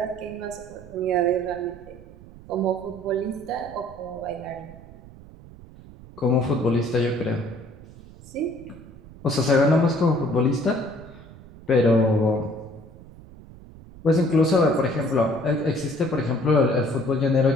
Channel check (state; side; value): noise; right; rumble, 19 dB below the sound